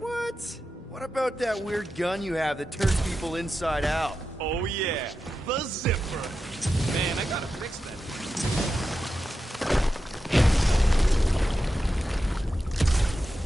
What about that weird gun you have that turns people inside out? Oh yeah, the zipper. Man, I gotta fix that.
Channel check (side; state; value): both; normal; correlation 0.90